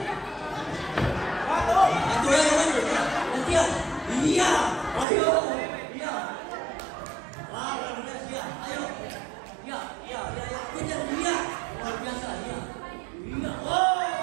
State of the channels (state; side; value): drops out; left; at 5.1 s